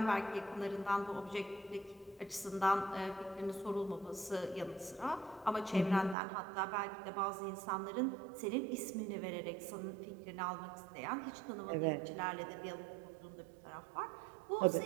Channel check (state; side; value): drops out; left; at 6.2 s